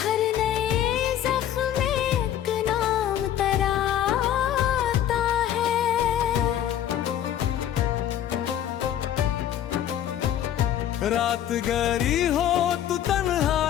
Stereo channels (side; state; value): right; quieter; 10.9 dB